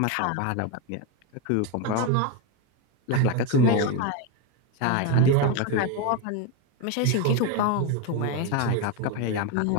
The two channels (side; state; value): both; different; correlation 0.03